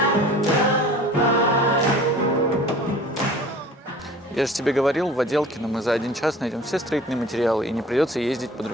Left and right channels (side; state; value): both; normal; correlation 0.45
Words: Я же тебе говорил, в Отделкино мы за 1 час найдем все строительные материалы и не придется ездить по